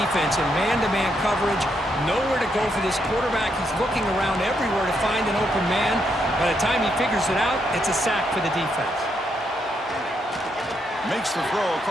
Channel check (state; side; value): normal; both; correlation 0.78